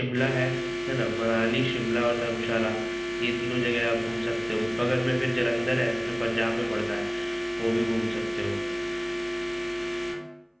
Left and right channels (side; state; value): both; identical; correlation 1.00